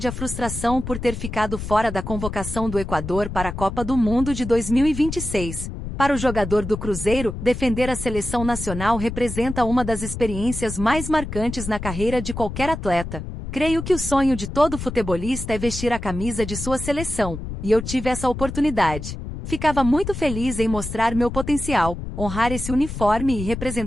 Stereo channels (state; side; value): noise; left; rumble, 7 dB below the sound